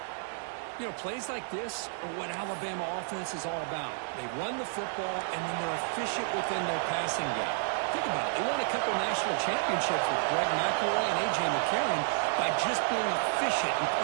You know, plays like this are what Alabama offense is all about. They run the football, and then they're efficient within their passing game. Think about it. They won a couple national championships with Greg McElroy and A.J. McCarron by just being efficient and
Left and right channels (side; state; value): left; silent; digital silence